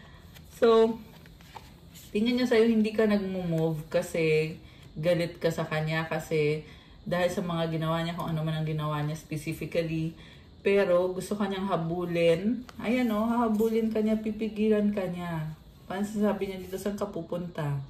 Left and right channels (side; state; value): both; identical; correlation 1.00